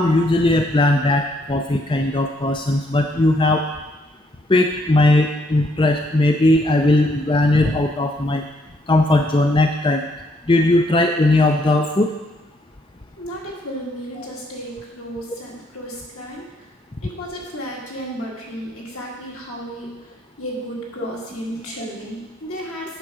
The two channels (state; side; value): normal; both; correlation 0.71